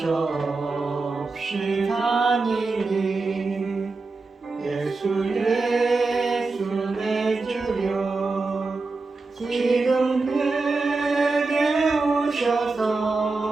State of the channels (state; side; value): quieter; left; 3.8 dB